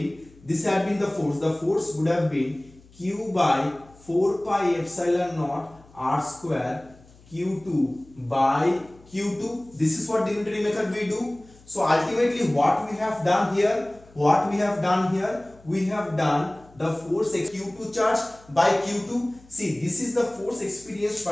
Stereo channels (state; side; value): noise; left; hum, 26 dB below the sound